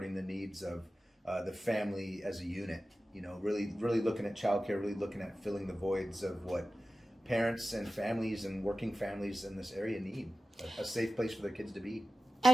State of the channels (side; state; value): both; normal; correlation 0.95